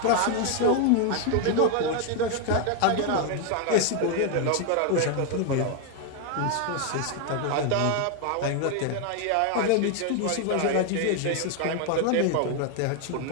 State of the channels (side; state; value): both; different; correlation 0.01